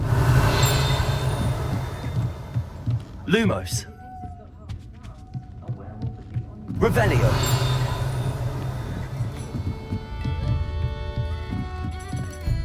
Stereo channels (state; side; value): identical; both; correlation 1.00